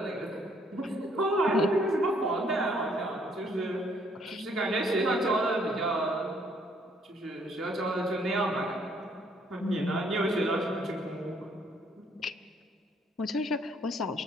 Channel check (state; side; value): normal; both; correlation 0.66